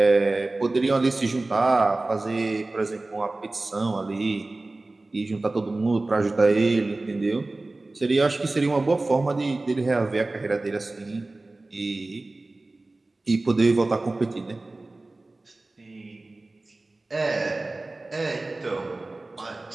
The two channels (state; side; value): quieter; left; 3.0 dB